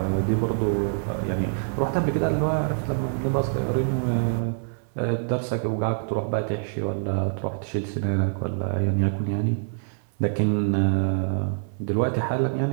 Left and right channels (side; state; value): left; silent; 61 dB below the other